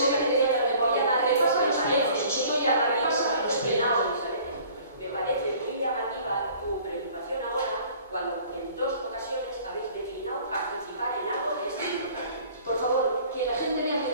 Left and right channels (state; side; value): inverted; both; correlation -0.51